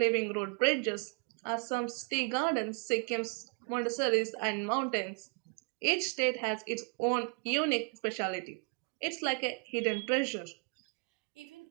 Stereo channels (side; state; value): left; quieter; 36.5 dB